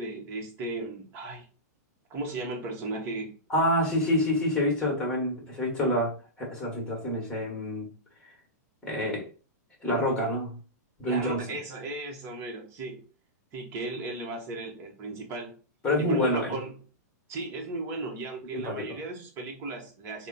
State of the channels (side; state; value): both; normal; correlation -0.15